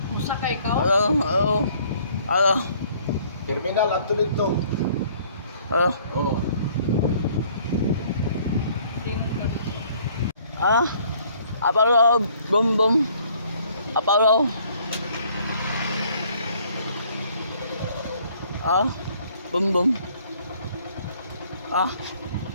Usa ka ikaw? Ano? Terminal at tulig to. Ano? Oo. Ano? Apalo, brum brum. Apalo. Ano? Brum brum. Ah?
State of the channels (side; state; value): both; inverted; correlation -0.60